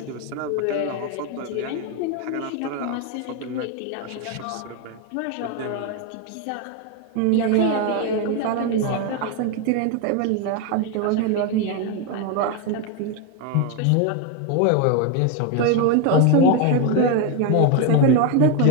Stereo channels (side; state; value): both; different; correlation 0.02